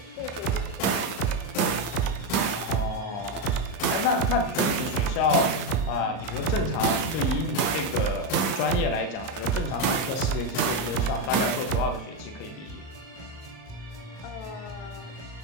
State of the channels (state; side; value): late; right; 38 ms